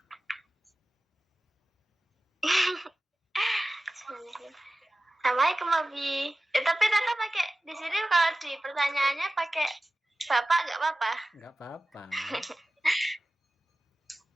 Assalamualaikum Abi. Tapi Tata pakai di sini kalau di pertanyaannya pakai Bapak nggak apa-apa? Nggak apa-apa.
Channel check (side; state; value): both; normal; correlation 0.95